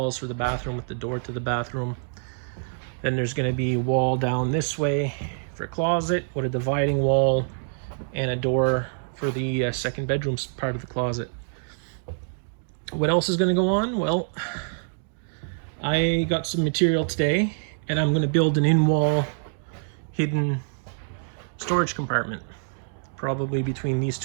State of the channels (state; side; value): silent; left; digital silence